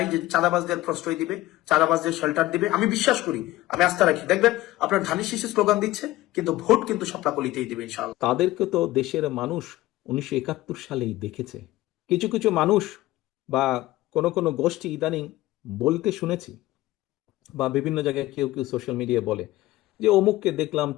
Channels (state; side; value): quieter; right; 17.1 dB